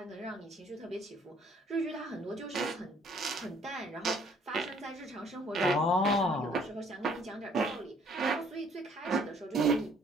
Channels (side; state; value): both; normal; correlation 0.61